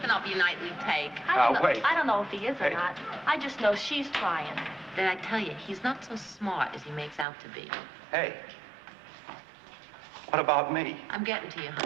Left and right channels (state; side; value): drops out; left; at 7.2 s